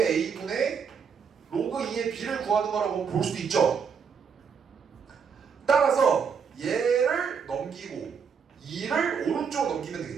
로그 2의 b를 구하는 거라고 볼 수도 있죠. 따라서 얘를 넘기고 2를 오른쪽으로 넘기면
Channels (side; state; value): left; quieter; 6.5 dB